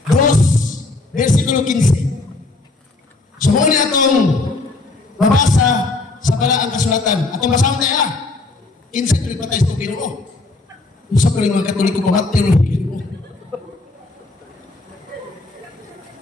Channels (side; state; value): right; quieter; 3.3 dB